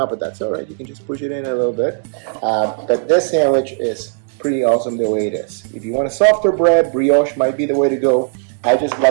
but that's all right. You can just push it in a little bit. But this sandwich is pretty awesome the way it is. If you want a softer bread, brioche might be the way to go. I just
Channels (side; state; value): left; silent; digital silence